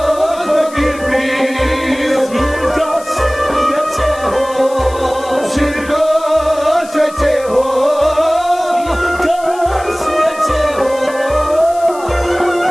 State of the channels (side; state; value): left; noise; hiss, 19 dB below the sound